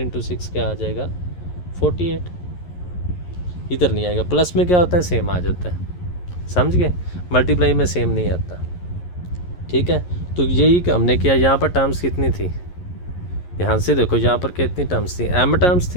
6 क्या आ जाएगा? 48। इधर नहीं आएगा। प्लस में क्या होता है, सेम आ जाता है, समझ गए? मल्टीप्लाई में सेम नहीं आता, ठीक है। तो यही हमने किया। यहाँ पर टर्म्स कितनी थी, ध्यान से देखो, यहाँ पर कितनी टर्म्स थी? m टर्म्स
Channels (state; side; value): late; right; 11 ms